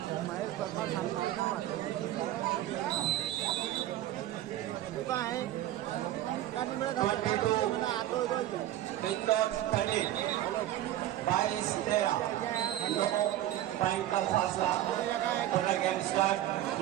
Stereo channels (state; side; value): quieter; left; 13.5 dB